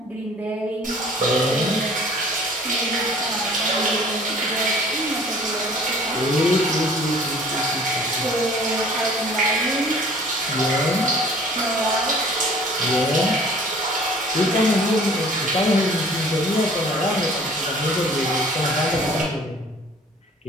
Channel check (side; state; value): both; normal; correlation 0.51